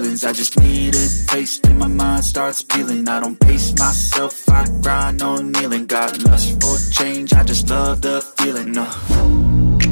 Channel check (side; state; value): both; inverted; correlation -1.00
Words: I just need a taste and my mind starts peeling. I don't pace myself, I grind on kneeling. Got lust for change, I just love the feeling.